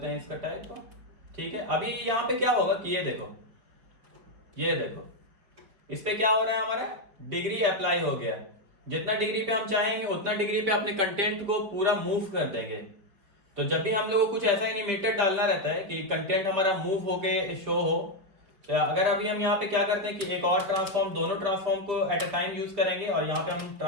हैं इसका टैग को, ठीक है। अभी यहाँ पे क्या होगा कि ये देखो इस पे क्या हो रहा है, हमारा डिग्री अप्लाई हो गया। जितना डिग्री पे हम चाहेंगे उतना डिग्री पे अपने कंटेंट को पूरा मूव कर देंगे। तो जब भी हम लोग को कुछ ऐसा एनिमेटेड डालना रहता है कि कंटेंट हमारा मूव होके शो हो, तो अगर अभी हम यहाँ पे क्या करते हैं कि एक और ट्रांसफॉर्म, दोनों ट्रांसफॉर्म को एट अ टाइम यूज करेंगे, और यहाँ पे हम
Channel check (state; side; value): late; left; 5.3 ms